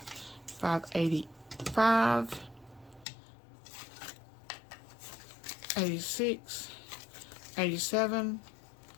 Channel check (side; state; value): right; drops out; at 3.1 s